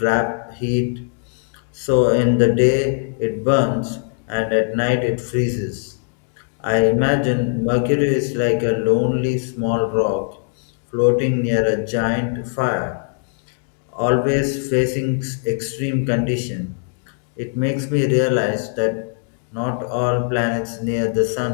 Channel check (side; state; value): right; silent; digital silence